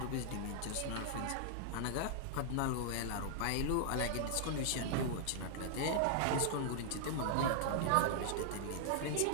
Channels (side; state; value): both; different; correlation -0.01